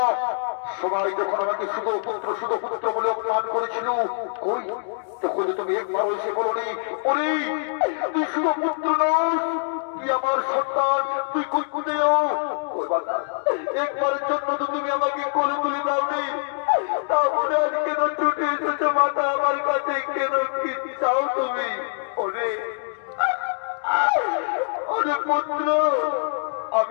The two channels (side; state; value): right; silent; digital silence